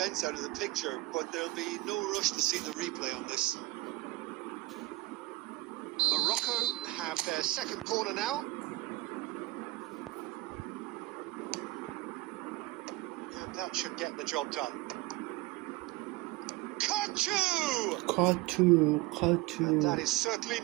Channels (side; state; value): left; quieter; 19.5 dB